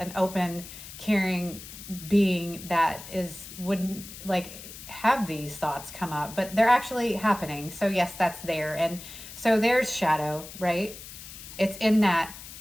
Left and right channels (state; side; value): noise; left; hiss, 14 dB below the sound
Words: open, caring being that wouldn't like have these thoughts come up, but they're actually happening. So yes, that's there. And so there's shadow, right? It's in that